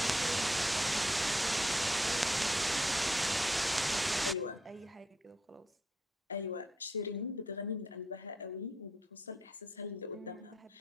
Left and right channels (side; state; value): both; normal; correlation 0.78